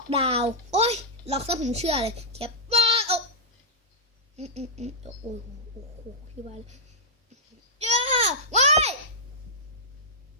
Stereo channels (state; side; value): normal; both; correlation -0.07